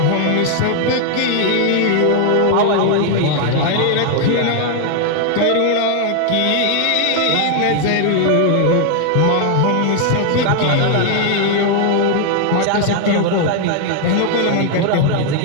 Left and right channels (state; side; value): different; both; correlation 0.00